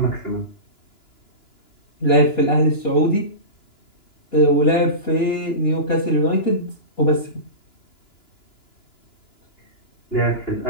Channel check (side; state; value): right; late; 2.9 ms